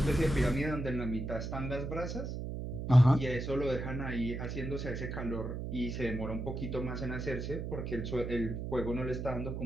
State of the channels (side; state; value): right; noise; hum, 4 dB below the sound